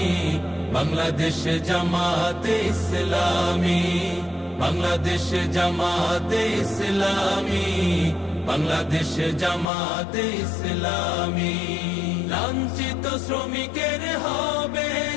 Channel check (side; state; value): right; drops out; at 9.7 s